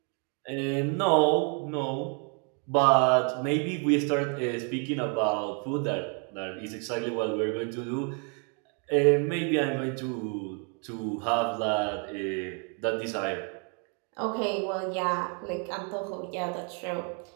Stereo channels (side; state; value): left; quieter; 38.4 dB